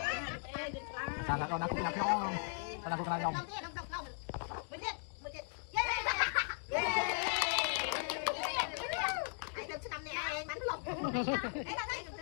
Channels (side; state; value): right; silent; 52 dB below the other